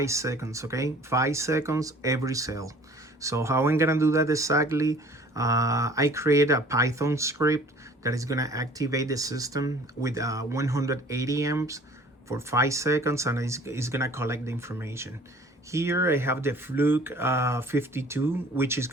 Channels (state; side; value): normal; both; correlation 0.51